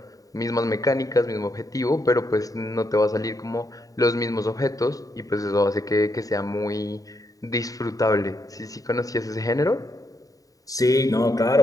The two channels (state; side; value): late; right; 0.17 ms